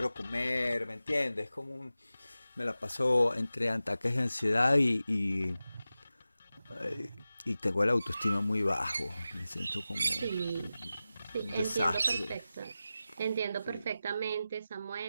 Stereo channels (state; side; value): inverted; both; correlation -0.94